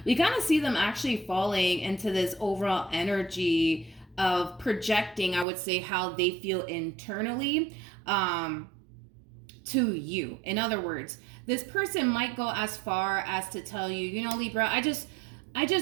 We kind of see them actually falling into this overall energy of projecting, I would say, how they feel internally to you. In other words, this person might go as far as to tell you, you know, Libra, I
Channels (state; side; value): drops out; left; at 5.5 s